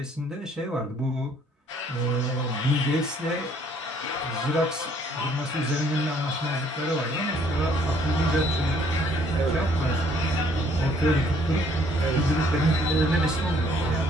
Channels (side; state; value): both; normal; correlation 0.62